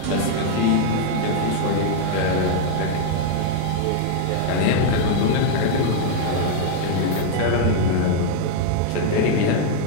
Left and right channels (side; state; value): both; different; correlation 0.00